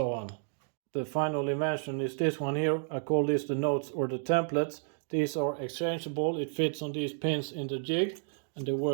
on. The final invention is this one here. I call this the notes or the templates. These are exchangeable. It fits on these pins in the jig, and they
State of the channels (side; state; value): left; silent; digital silence